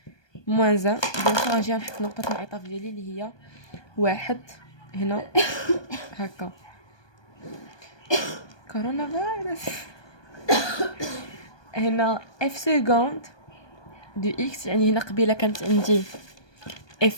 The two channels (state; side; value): late; right; 1.2 ms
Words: موان زان. دونك غنجي نحط نقطه الانعطاف ديالي اللي هي واحد هنا هكا. كورونا فيروس. هنا اف سكوند دو اكس، يعني هنا قبيله كانت عندي